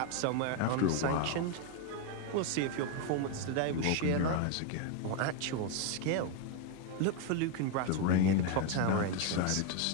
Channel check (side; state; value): both; different; correlation 0.01